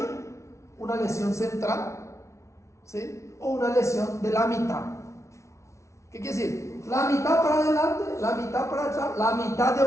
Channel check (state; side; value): late; right; 0.14 ms